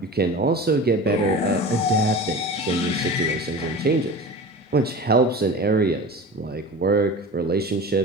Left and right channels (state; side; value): normal; both; correlation 0.34